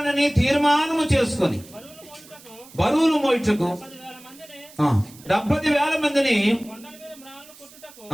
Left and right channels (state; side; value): noise; right; hiss, 22 dB below the sound